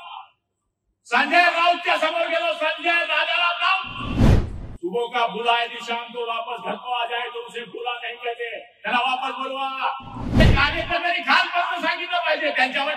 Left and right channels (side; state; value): both; identical; correlation 1.00